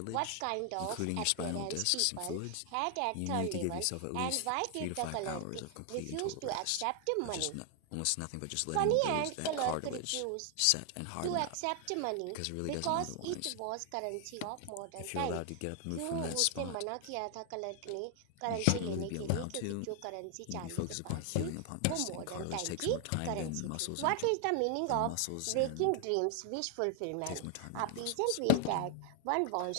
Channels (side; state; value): both; different; correlation 0.00